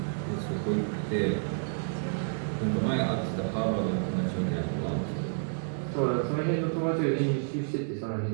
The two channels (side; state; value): left; silent; digital silence